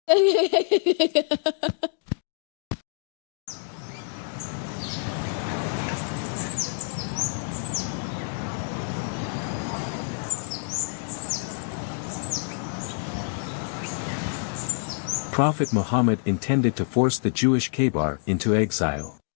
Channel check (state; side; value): silent; right; 60 dB below the other